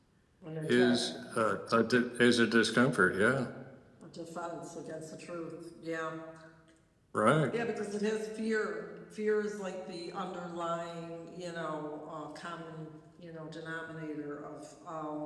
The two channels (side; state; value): both; identical; correlation 1.00